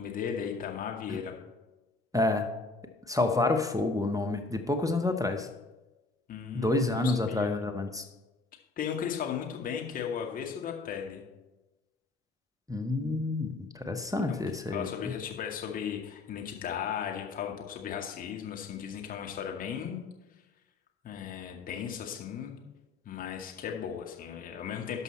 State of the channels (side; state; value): right; quieter; 3.5 dB